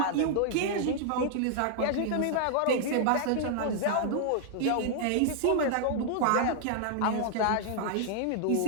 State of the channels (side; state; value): both; different; correlation -0.01